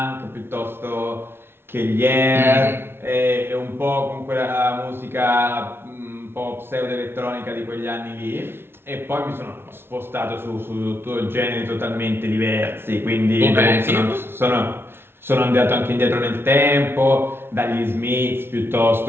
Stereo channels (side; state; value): left; late; 0.11 ms